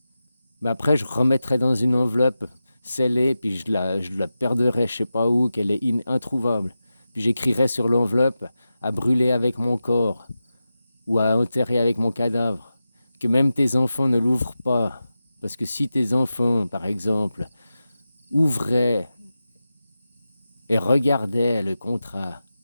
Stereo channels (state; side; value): inverted; both; correlation -0.92